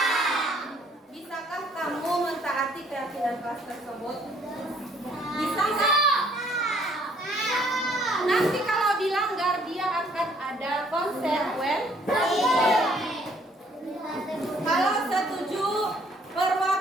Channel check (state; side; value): normal; both; correlation 0.62